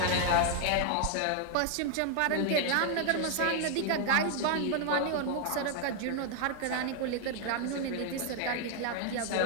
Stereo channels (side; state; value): both; different; correlation 0.00